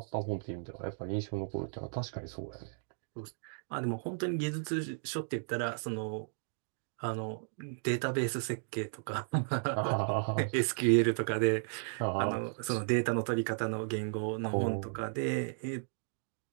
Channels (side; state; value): left; silent; digital silence